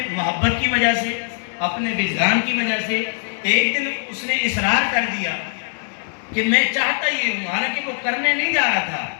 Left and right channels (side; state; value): right; silent; digital silence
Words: محبت کی وجہ سے، اپنے وجدان کی وجہ سے ایک دن اس نے اصرار کر دیا کہ میں چاہتا یہ ہوں، حالانکہ وہ کرنے نہیں جا رہا تھا،